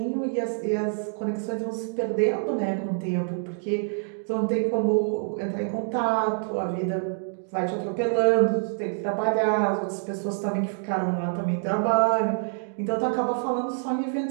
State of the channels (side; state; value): left; silent; digital silence